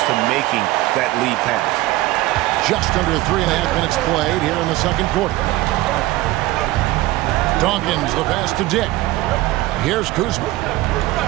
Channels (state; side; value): quieter; left; 17.8 dB